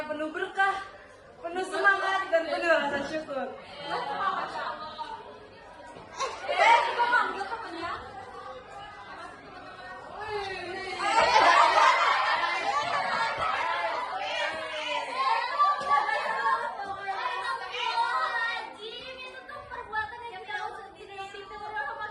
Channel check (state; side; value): identical; both; correlation 1.00